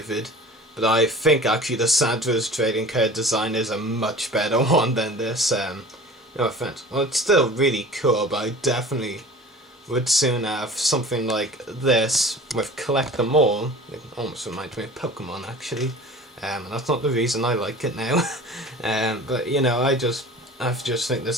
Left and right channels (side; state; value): both; normal; correlation 0.41